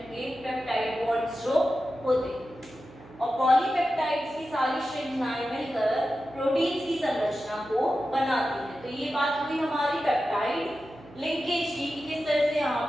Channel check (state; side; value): noise; right; hum, 20 dB below the sound